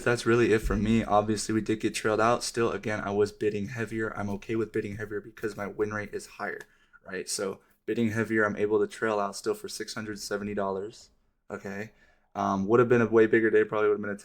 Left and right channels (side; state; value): both; identical; correlation 1.00